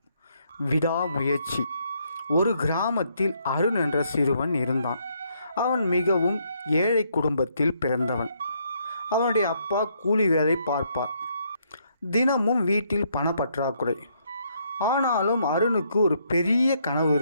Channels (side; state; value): both; inverted; correlation -0.72